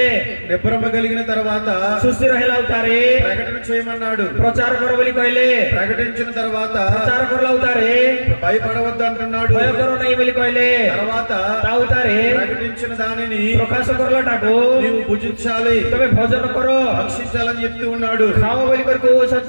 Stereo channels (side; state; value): both; inverted; correlation -1.00